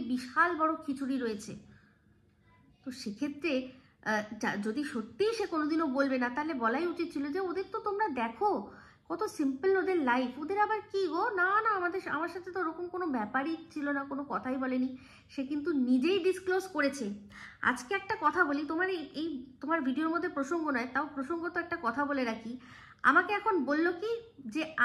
বিশাল বড় খিচুড়ি রয়েছে। তো সেক্ষেত্রে যদি সত্যিই সে কোনোদিনও বলবে না, তাহলে বলাই উচিত ছিল যে ওদের তো তোমরা দেখো কত সিম্পল ওদের লাইফ। ওদের আবার কি গো, না না আমার সাথে তো ওরকম কোনো ব্যাপারই ছিল না, কোনো কথাই বলেনি। সে কিন্তু নিজেই ডিসক্লোজ করেছে। আজকে একটা কথা বলি, তোমার এই তোমার ভিডিওর মধ্যে প্রসঙ্গ নয়, তাও প্রসঙ্গ তো একটা কথা বলে রাখি। আমাকে এখন বলল কি যে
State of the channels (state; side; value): identical; both; correlation 1.00